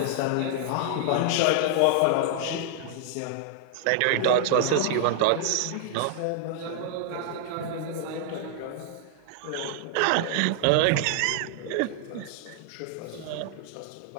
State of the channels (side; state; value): both; different; correlation -0.01